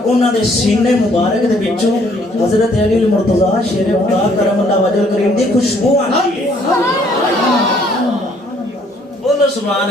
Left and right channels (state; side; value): normal; both; correlation 0.64